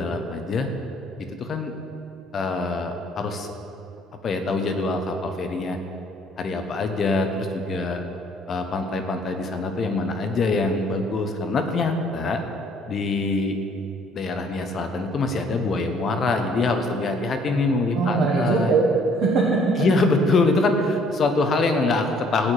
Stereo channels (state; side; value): normal; both; correlation 0.60